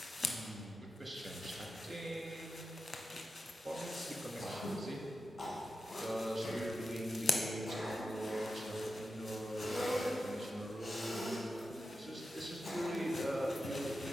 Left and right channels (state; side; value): normal; both; correlation 0.90